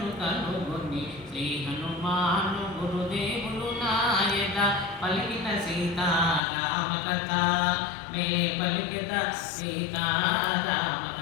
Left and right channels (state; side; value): drops out; right; at 6.4 s